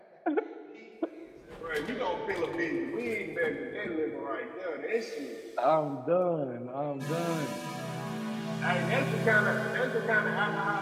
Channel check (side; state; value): both; identical; correlation 1.00